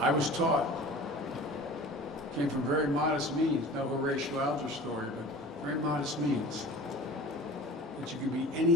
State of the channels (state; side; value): normal; both; correlation 0.40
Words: was taught, came from very modest means, no Horatio Alger story, but very modest means, that you can be